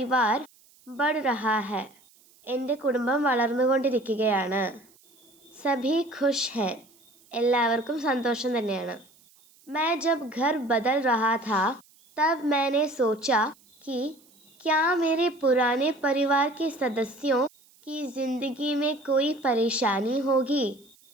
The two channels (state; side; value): noise; right; hiss, 30 dB below the sound